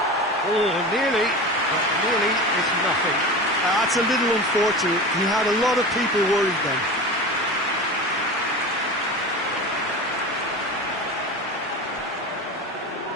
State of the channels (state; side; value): normal; both; correlation 0.30